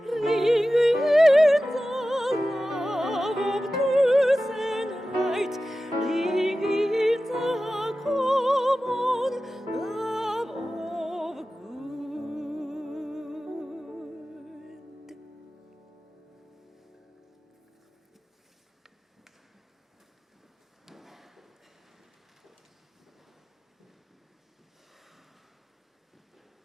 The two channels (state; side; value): normal; both; correlation 0.95